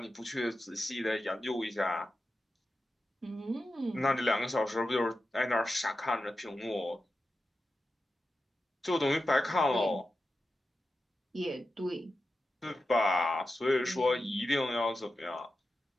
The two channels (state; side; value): normal; both; correlation 0.91